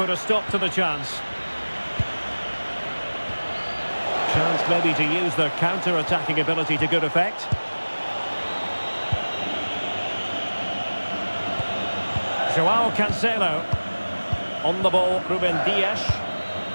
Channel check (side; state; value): both; inverted; correlation -1.00